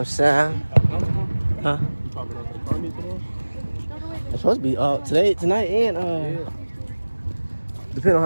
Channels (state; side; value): inverted; both; correlation -1.00